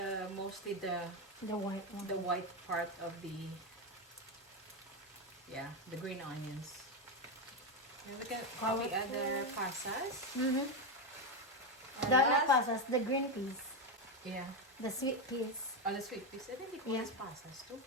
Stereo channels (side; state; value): both; normal; correlation 0.09